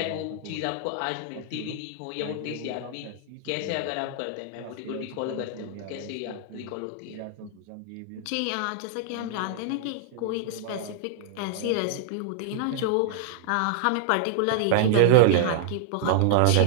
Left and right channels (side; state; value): both; different; correlation -0.01